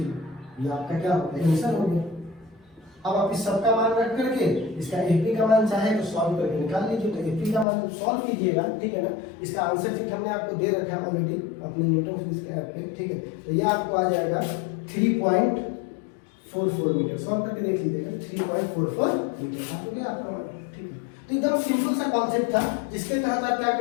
ये आपका क्या होगा, आंसर हो गया। अब आप इस सब का मान रख करके इसका एपी का मान चाहे तो सॉल्व करके निकाल लीजिए। तो एपी का मान सॉल्व कीजिएगा, ठीक है ना। इसका आंसर शीट हमने आपको दे रखा है ऑलरेडी अपने न्यूटन फिजिक्स के ऐप पे, ठीक है। तो ये आपको आ जाएगा 3.44 मीटर। सॉल्व करके देख लीजिएगा 3.44 मीटर आ गया आपका मान, ठीक है। तो एकदम सिंपल सा कॉन्सेप्ट था जिसके तहत आप क्या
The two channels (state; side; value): drops out; right; at 7.7 s